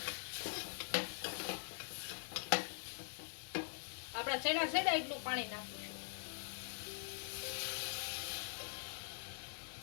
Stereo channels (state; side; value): silent; right; digital silence